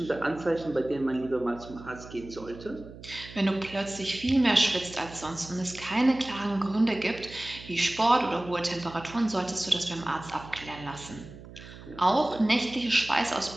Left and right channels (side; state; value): right; noise; hum, 16 dB below the sound